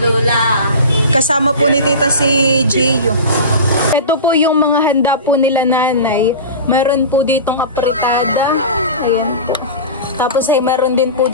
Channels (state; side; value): inverted; both; correlation -0.31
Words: Kasama po ni Tita si Gio. Ito po yung mga handa po nila nanay. Mayroon po ditong apritada. Ayan po. Tapos ay mayroon din po